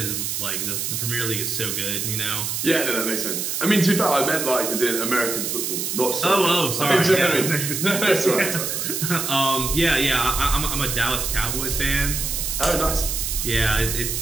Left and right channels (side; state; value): right; noise; hiss, 2 dB below the sound